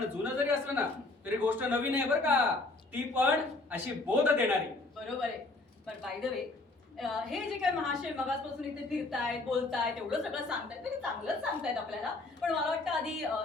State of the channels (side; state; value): right; quieter; 3.1 dB